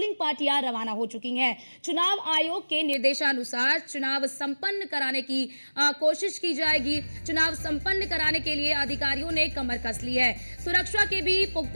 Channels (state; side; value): inverted; both; correlation -1.00